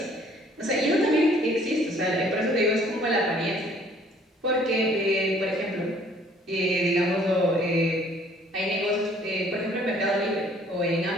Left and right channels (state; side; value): normal; both; correlation 0.58